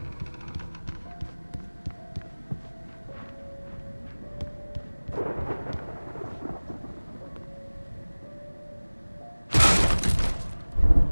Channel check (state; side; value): inverted; both; correlation -1.00